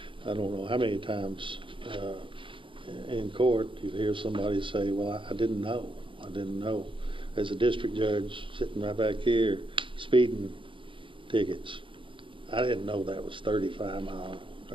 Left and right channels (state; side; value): late; left; 0.25 ms